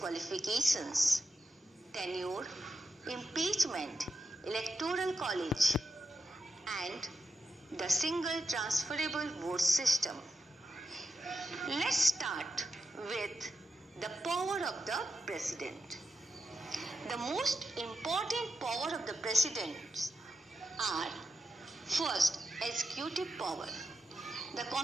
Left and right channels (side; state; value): both; normal; correlation 0.87